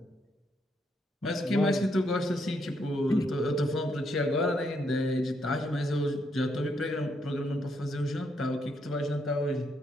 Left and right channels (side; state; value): both; normal; correlation 0.76